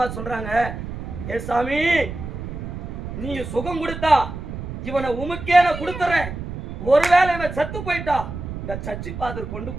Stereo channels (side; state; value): right; noise; rumble, 8 dB below the sound